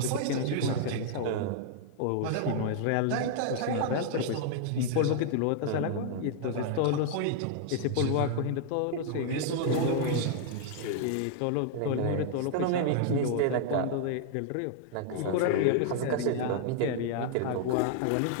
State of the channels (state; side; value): different; both; correlation -0.01